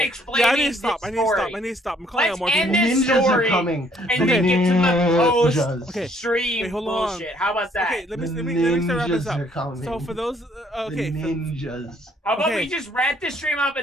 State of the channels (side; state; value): both; normal; correlation 0.64